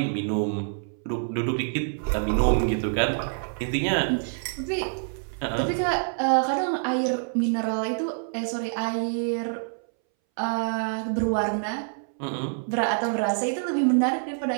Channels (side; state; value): left; silent; 61 dB below the other